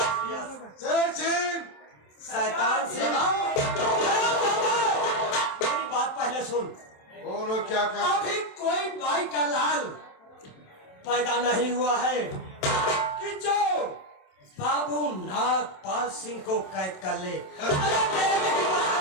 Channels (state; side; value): late; right; 27 ms